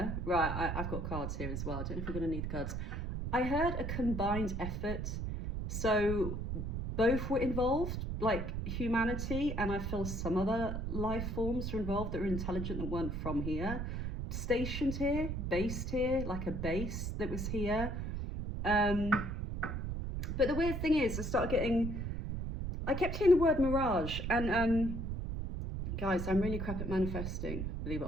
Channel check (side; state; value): right; noise; rumble, 3 dB below the sound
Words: right, I've got cards here as well. I don't know if we're going to need the cards. I heard a combined effort. So both were involved, like humanity, and I feel some other life forms were involved that were intelligent that weren't from here. Stationed here, based here, like a base that was here. But the weird thing is, I kept hearing the word mirage, and guys, I'm really crap at manifesting, believe it